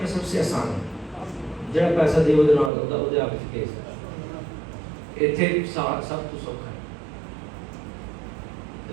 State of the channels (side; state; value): left; drops out; at 2.7 s